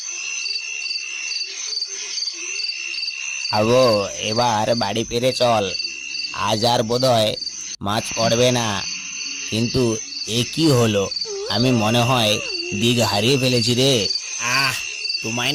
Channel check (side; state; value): both; identical; correlation 1.00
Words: আবো, এবার বাড়ি ফিরে চল। আজ আর বোধহয় মাছ পড়বে না। কিন্তু এ কি হলো? আমি মনে হয় দিক হারিয়ে ফেলেছি রে। তোমায়